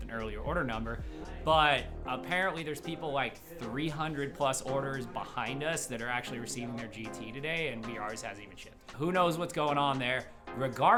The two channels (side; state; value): both; identical; correlation 1.00